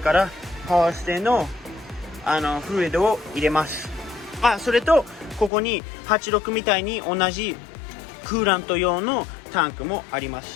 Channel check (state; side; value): drops out; right; at 5.5 s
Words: からパワーステのフルイドを入れます。それとここに86みたいに同じクーラント用のタンクもありま